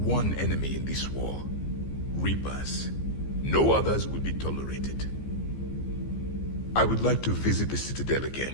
enemy in this war. Reapers. No others will be tolerated. I would like to visit the Citadel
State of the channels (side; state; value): right; late; 15 ms